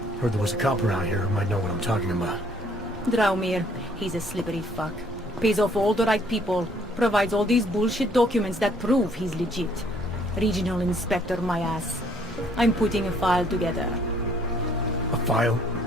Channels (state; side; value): normal; both; correlation 0.63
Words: Heard there was a cop around here who might know what I'm talking about. Draumir, he's a slippery fuck. Pays off all the right people. Provides all these bullshit documents that prove he's legit. Regional Inspector, my ass. I'm putting a file together. A file?